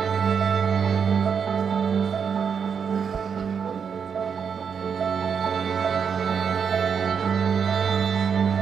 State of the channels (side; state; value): left; quieter; 6.7 dB